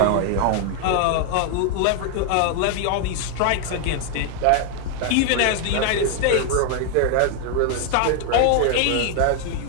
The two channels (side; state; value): both; different; correlation 0.00